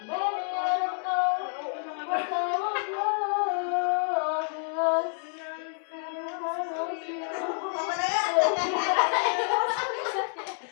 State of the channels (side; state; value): right; silent; 59 dB below the other